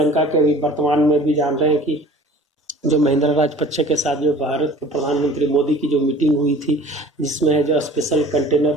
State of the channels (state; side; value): normal; both; correlation 0.46